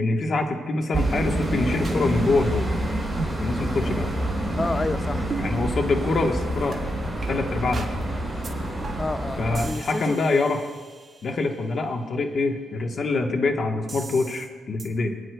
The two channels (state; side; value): normal; both; correlation 0.85